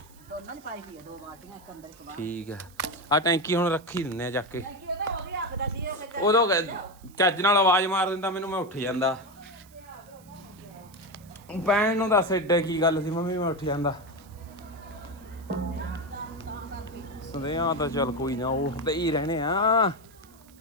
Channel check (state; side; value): noise; right; hiss, 26 dB below the sound